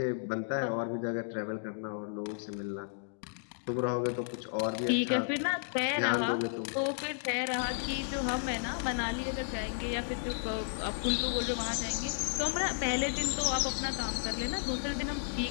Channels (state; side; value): silent; right; digital silence